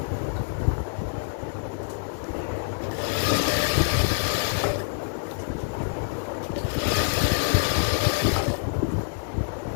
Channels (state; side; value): silent; right; digital silence